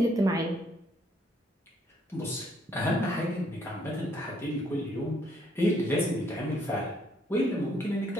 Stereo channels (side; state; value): both; normal; correlation 0.68